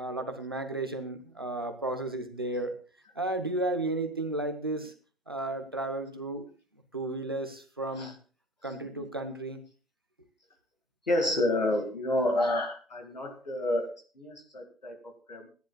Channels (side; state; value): both; normal; correlation 0.44